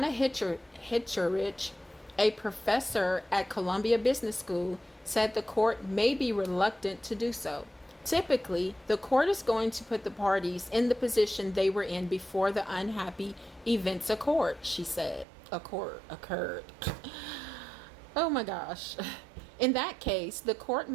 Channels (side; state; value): left; drops out; at 15.2 s